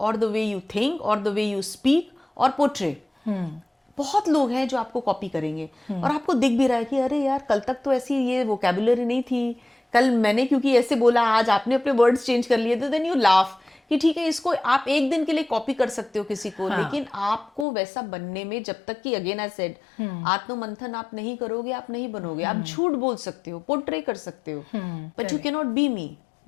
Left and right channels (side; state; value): right; drops out; at 17.7 s